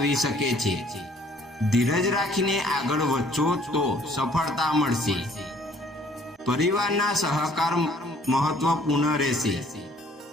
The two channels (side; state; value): both; normal; correlation 0.59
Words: શકે છે. ધીરજ રાખીને આગળ વધશો તો સફળતા મળશે. પરિવારના સહકાર મહત્વપૂર્ણ રહેશે.